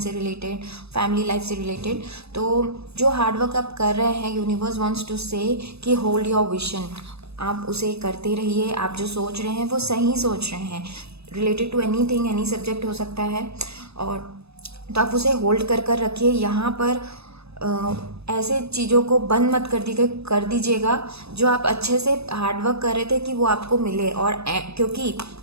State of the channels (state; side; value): late; left; 0.79 ms